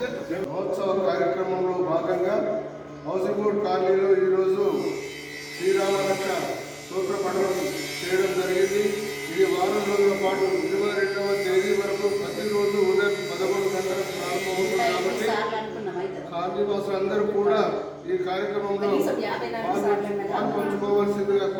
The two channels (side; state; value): both; identical; correlation 1.00